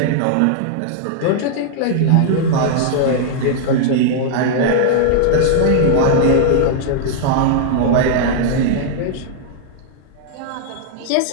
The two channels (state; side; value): different; both; correlation -0.01